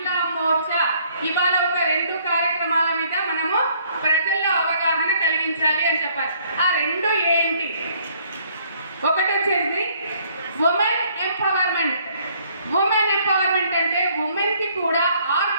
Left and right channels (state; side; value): inverted; both; correlation -0.63